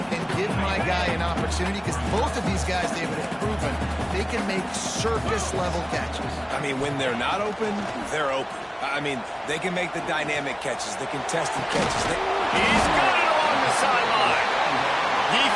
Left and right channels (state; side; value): identical; both; correlation 1.00